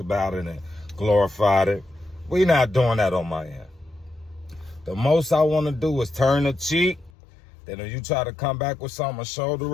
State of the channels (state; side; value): drops out; right; at 7.1 s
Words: about it and glorified it. We not doing that on my end. The most I want to do is turn the cheek. Then if you try to come back with something, a shoulder